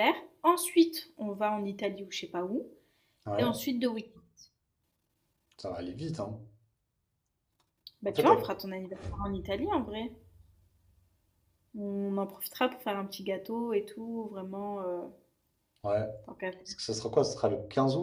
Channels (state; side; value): identical; both; correlation 1.00